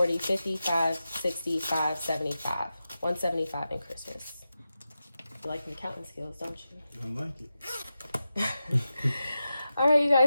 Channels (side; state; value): both; inverted; correlation -0.91